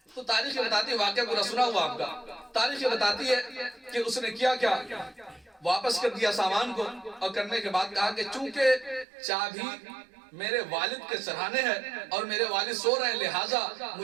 تو تاریخ بتاتی ہے, واقعہ پورا سنا ہوا آپ کا, تاریخ بتاتی ہے کہ اس نے کیا واپس کر دیا سامان کو, اور کرنے کے بعد کہا کہ چونکہ چابی میرے والد کے سرہانے ہے اور میرے والد سو رہے ہیں لہٰذا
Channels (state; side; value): drops out; left; at 9.1 s